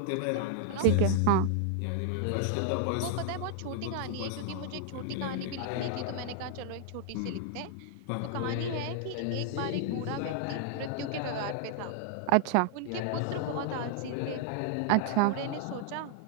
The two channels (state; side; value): different; both; correlation -0.01